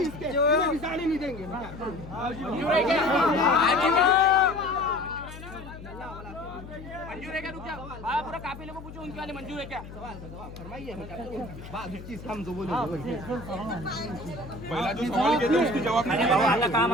नहीं देंगे। मंजूर है क्या? रुक जाओ, बाबा पूरा काफिले को पूछो उनके वाले मंजूर है क्या? सवाल का जवाब फरमाइए। बात चीज हम दो बोले पहला जो सवाल किया था उसकी जवाब नहीं बाबा आता काम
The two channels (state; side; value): noise; left; hum, 14 dB below the sound